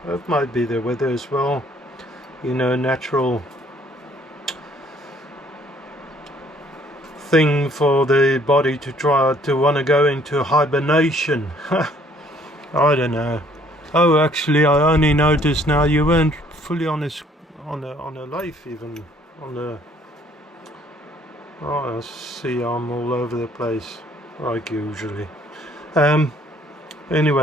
it might be the weather as well, you know, natural thing for the body to try to want to go into hibernation. I don't know. Oh, actually, I only noticed now you weren't fully on a lathe, even on the. Oh, I see, I'm all over the place like usually.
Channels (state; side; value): normal; both; correlation 0.61